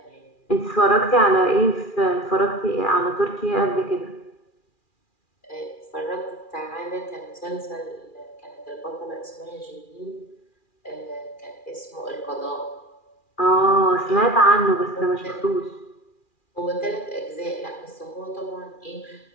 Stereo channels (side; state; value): right; late; 2.4 ms